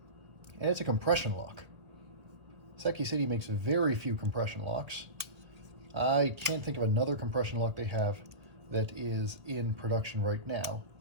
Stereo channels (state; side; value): late; left; 1.9 ms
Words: and it's a compression lock. Seki City makes very few compression locks. I can't think of another compression lock they have that is in production right now.